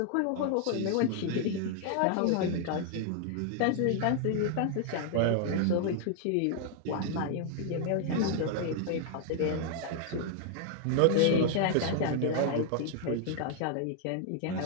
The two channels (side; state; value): both; different; correlation 0.00